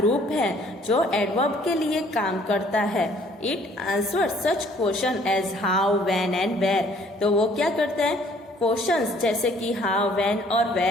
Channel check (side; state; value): both; normal; correlation 0.59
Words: है जो adverb के लिए काम करता है. It answers such question as how, when and where. तो वो क्या करता है? क्वेश्चंस जैसे कि how, when और